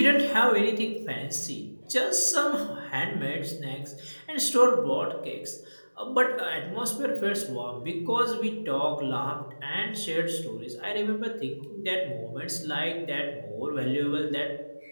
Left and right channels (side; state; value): both; inverted; correlation -1.00